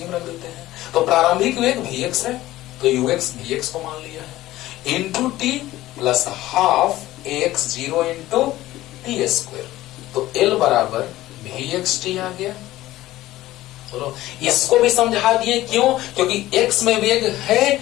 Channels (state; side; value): quieter; right; 16.0 dB